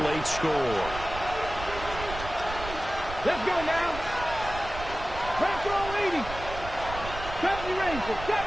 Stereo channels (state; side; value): noise; right; rumble, 10 dB below the sound